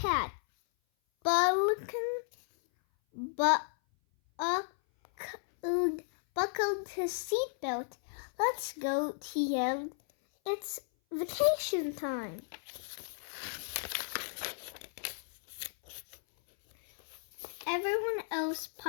buckled his seatbelt. Let's go, he yelled. It's vacation time. Everyone else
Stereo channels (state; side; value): silent; right; 55 dB below the other